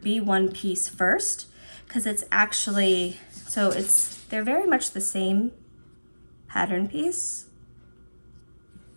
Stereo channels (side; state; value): both; inverted; correlation -1.00